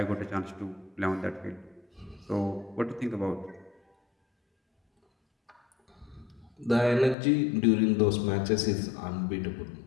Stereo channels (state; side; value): drops out; right; at 7.2 s